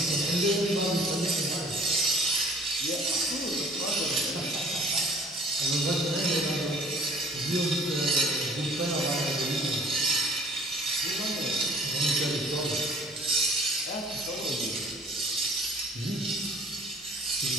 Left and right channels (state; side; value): normal; both; correlation 0.52